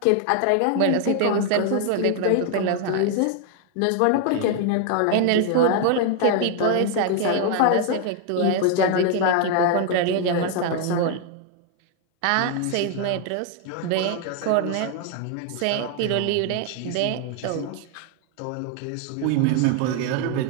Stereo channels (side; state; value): both; different; correlation 0.00